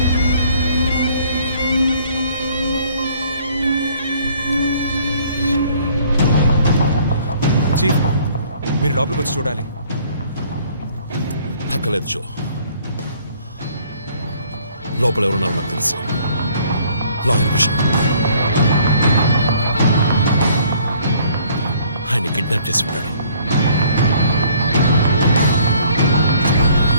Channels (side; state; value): both; inverted; correlation -0.59